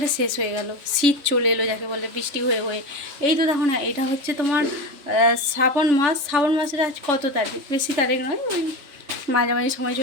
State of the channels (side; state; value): left; late; 3.5 ms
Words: শেষ হয়ে গেল। শীত চলে এলো যাকে বলে বৃষ্টি হয়ে হয়ে। এই তো দেখো না, এটা হচ্ছে তোমার শ্রাবণ মাসের আজ কত তারিখ, বেশি তারিখ নয়, ওই মাঝামাঝি সময়